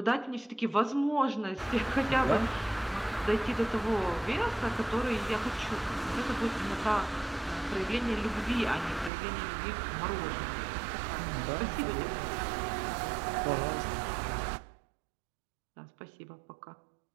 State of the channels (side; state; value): left; drops out; at 9.1 s